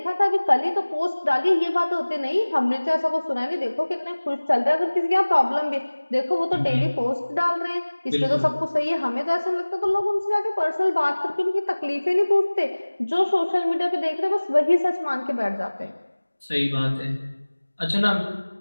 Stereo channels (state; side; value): inverted; both; correlation -1.00